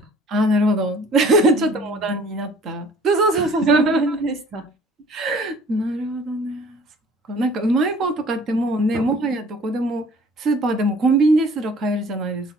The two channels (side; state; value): both; normal; correlation 0.52